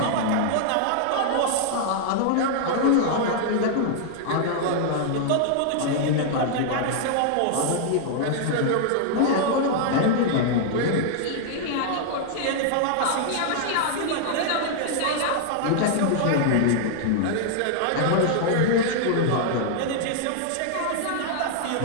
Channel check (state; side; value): different; both; correlation -0.01